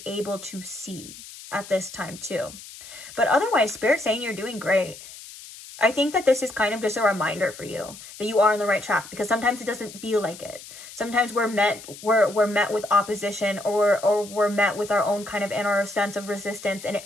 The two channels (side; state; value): left; noise; hiss, 16 dB below the sound